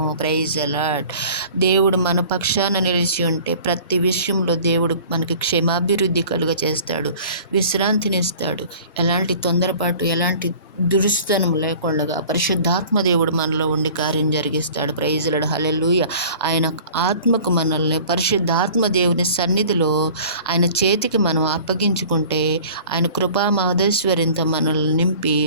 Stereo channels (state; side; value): inverted; both; correlation -0.46